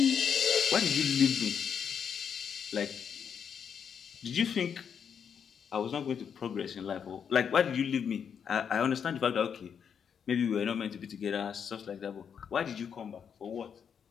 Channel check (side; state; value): right; quieter; 7.4 dB